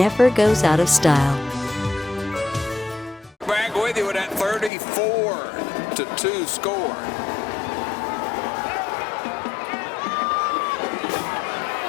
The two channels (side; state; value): right; drops out; at 4.7 s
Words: goes out of style. Back with you with that 34-2 score.